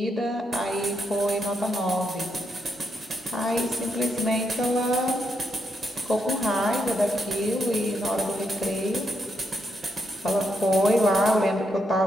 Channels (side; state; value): both; normal; correlation 0.79